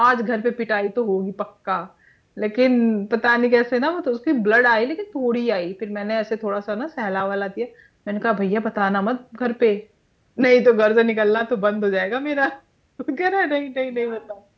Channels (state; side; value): identical; both; correlation 1.00